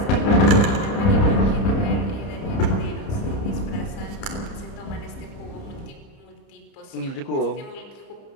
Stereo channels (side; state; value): right; late; 30 ms